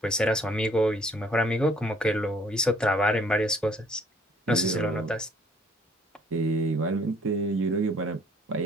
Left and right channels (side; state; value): both; normal; correlation 0.60